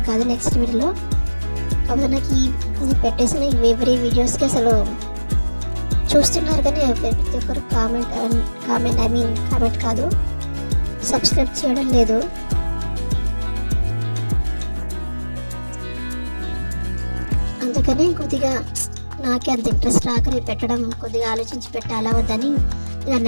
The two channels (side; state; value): both; inverted; correlation -1.00